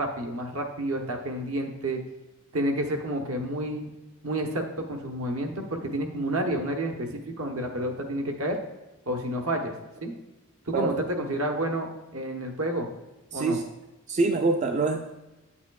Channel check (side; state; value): both; normal; correlation 0.26